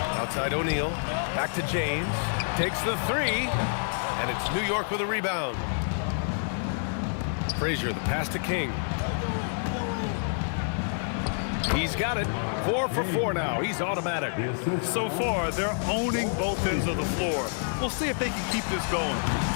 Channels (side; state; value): right; silent; digital silence